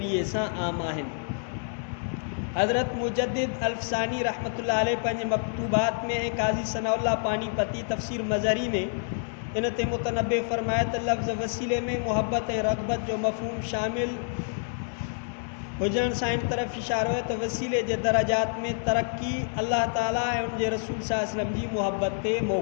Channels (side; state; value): right; silent; digital silence